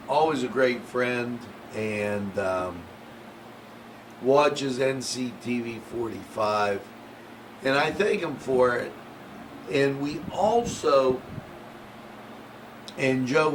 always a great friend, and watches Nctv45, and I thank him for it. And we also, and Joe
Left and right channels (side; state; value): both; identical; correlation 1.00